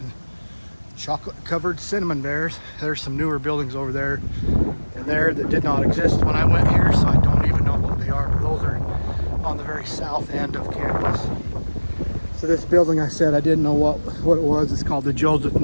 chocolate covered cinnamon bears. There's some newer buildings over there and there that did not exist when I went here, so I don't even know what they are, but those are on the very south end of campus. So this building, I said I didn't know what it was. It's called the Joseph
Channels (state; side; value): inverted; both; correlation -1.00